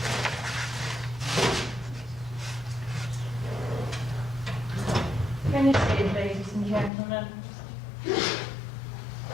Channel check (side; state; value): right; drops out; at 6.9 s